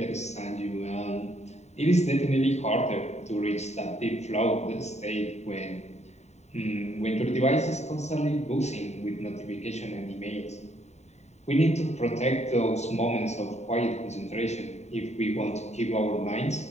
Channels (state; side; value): late; right; 0.32 ms